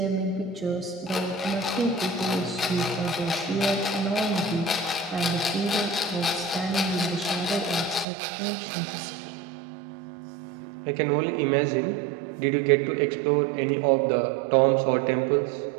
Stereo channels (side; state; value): left; drops out; at 8.1 s